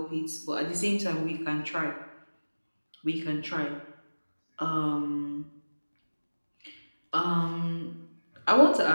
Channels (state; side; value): inverted; both; correlation -1.00